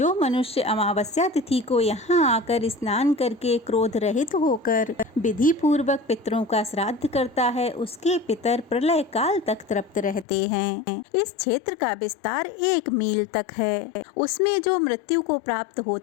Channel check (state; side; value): drops out; right; at 10.2 s